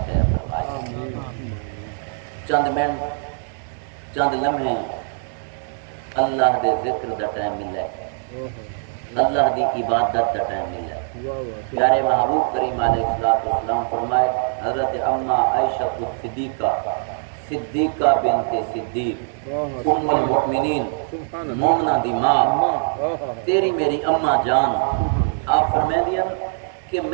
خیر فرمائے چند منٹ چند لمحے اللہ دے ذکر دا ٹائم ملے اللہ دی عبادت دا ٹائم ملے پیارے محبوب کریم علیہ السلام فرمائے حضرت اما عائشہ صدیقہ بنت صدیق ام المؤمنین مومنہ دی ماں تیری میری اماں جان آپ فرمائے دیا کہ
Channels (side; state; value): left; silent; digital silence